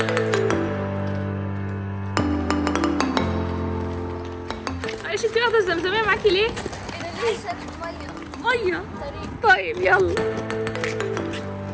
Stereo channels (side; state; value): both; identical; correlation 1.00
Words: معلش انتي واخده الزمزميه معاكي ليه؟ ميه طيب يلا.